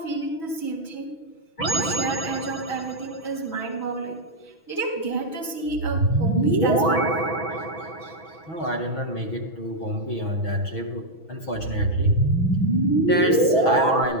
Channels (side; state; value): right; late; 6.1 ms